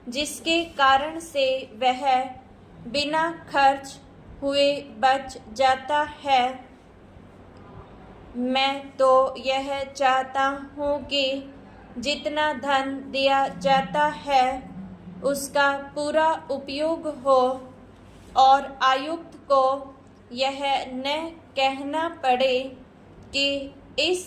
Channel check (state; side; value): identical; both; correlation 1.00